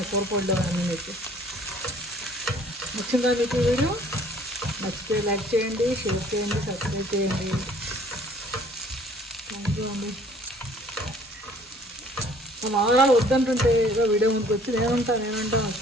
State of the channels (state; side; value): normal; both; correlation 0.55